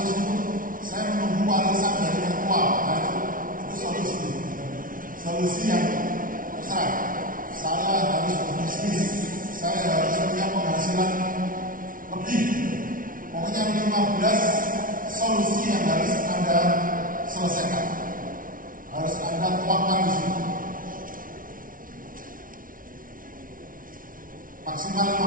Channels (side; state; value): left; late; 0.40 ms